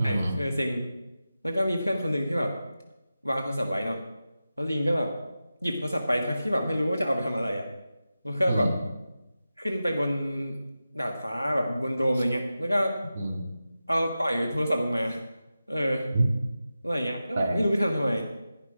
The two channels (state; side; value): inverted; both; correlation -0.93